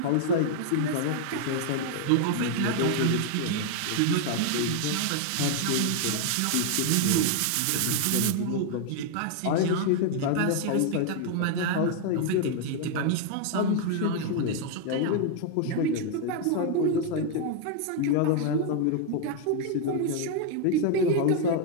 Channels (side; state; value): both; different; correlation 0.00